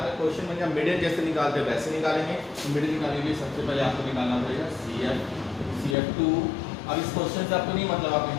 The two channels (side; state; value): right; drops out; at 6.0 s